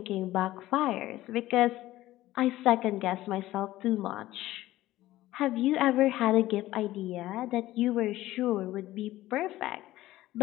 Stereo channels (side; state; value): right; quieter; 15.8 dB